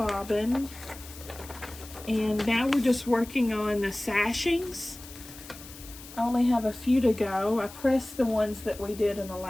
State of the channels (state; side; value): noise; left; hiss, 16 dB below the sound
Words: and now we're just working on the sashings. I only have a few to go. I pressed the ones that we did in the